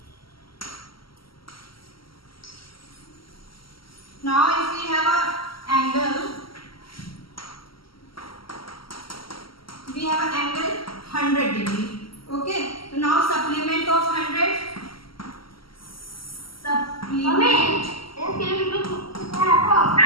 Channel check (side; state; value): right; late; 0.74 ms